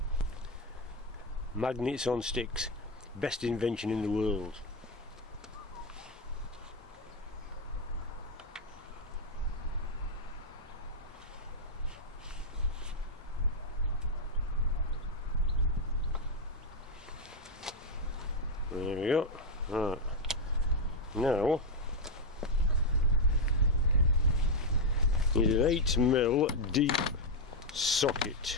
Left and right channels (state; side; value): normal; both; correlation 0.02